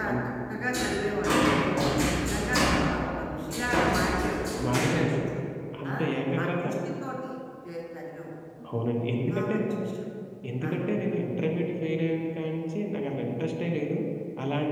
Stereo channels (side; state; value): both; identical; correlation 1.00